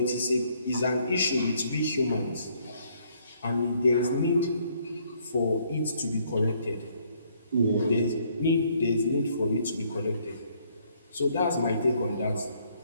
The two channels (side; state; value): both; inverted; correlation -0.67